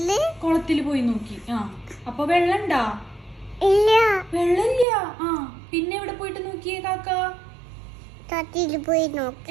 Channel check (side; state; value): left; drops out; at 4.9 s